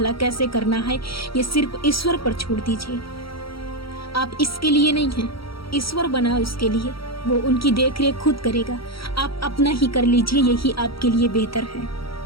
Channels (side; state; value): right; late; 0.75 ms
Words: कैसे करना है, ये सिर्फ ईश्वर पर छोड़ दीजिए। आप इसके लिए नहीं हैं, ईश्वर बना उसके लिए, वो उनकी देखरेख खुद करेगा। आप अपना ही कर लीजिए, यही आपके लिए बेहतर है।